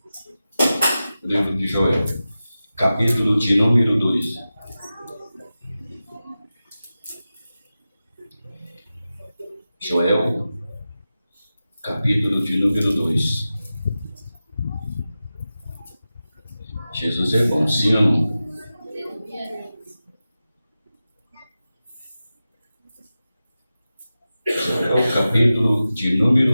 Livro de Joel. Capítulo de número 2. Joel. Capítulo de número 2. Jesus é bom, sim ou não? Joel, capítulo de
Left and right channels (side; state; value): both; inverted; correlation -0.94